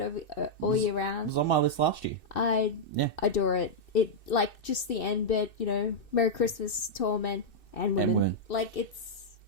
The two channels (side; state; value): right; late; 2.6 ms